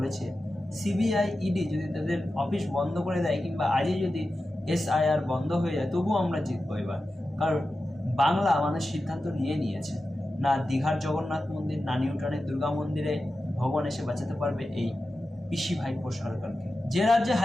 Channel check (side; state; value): both; normal; correlation 0.92